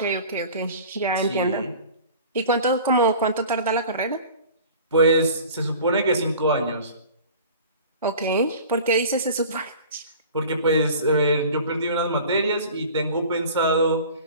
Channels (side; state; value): both; inverted; correlation -0.42